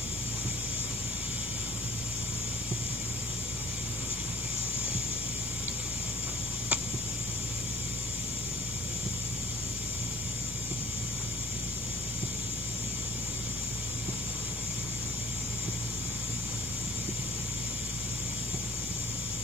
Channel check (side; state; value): both; normal; correlation 0.51